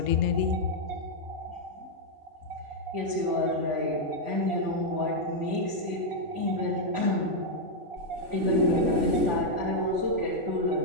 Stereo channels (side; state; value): left; late; 3.5 ms